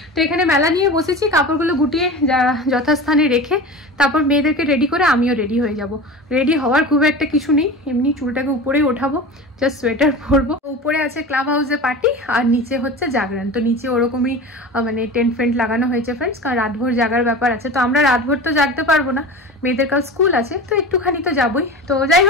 তো এখানে মেলা নিয়ে বসেছি, কাপড়গুলো গুটিয়ে যথাস্থানে রেখে তারপর মেয়েদেরকে রেডি করে আমিও রেডি হয়ে যাব। রেডি হওয়ার খুব একটা কিছু নেই, এমনি চুলটাকে উপরেই ওঠাবো, জাস্ট সোয়েটার পরবো। উপরে আছে ক্লাব হাউসে পার্টি, আর নিচে হচ্ছে জাগরণ। তো নিচে ওরকমই মানে টেন্ট ফেন্ট লাগানো হয়েছে ফ্রেন্ডস, কারণ রাতভর জাগার ব্যাপার আছে। তো আমরা রাতভর তো জাগতে পারবো না, মেয়েদের কাল স্কুল আছে, তো একটুখানি তো যাবোই। তো যাই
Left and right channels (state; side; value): normal; both; correlation 0.32